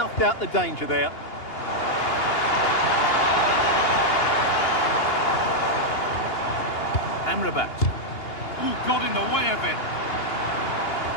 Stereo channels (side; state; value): right; late; 2.8 ms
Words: out the danger there. Amrabat. Ooh, got in the way of it.